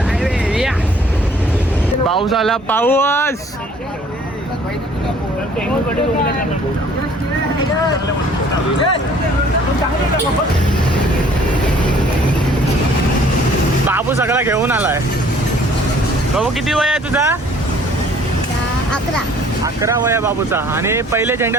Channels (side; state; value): both; normal; correlation 0.56